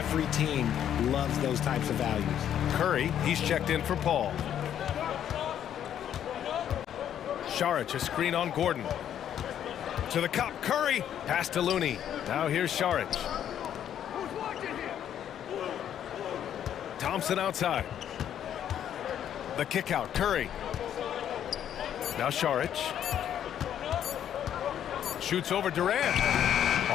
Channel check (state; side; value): quieter; right; 10.0 dB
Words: team loves those types of values. Curry, he's checked in for Paul. Šarić, a screen on Gordon. To the cup, Curry, pass to Looney. Now here's Šarić. Thompson outside. The kick out, Curry. Now Šarić. Shoots over Durant.